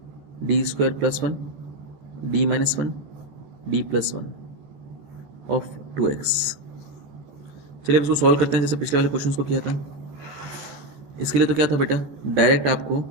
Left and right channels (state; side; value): late; left; 14 ms